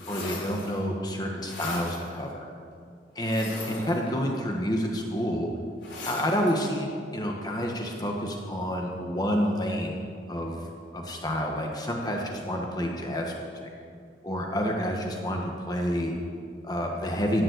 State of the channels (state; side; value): normal; both; correlation 0.65